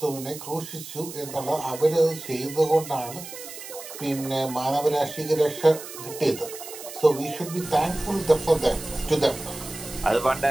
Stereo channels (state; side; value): noise; right; hiss, 12 dB below the sound